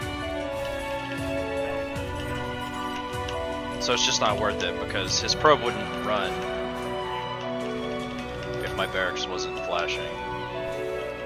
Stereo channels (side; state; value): both; identical; correlation 1.00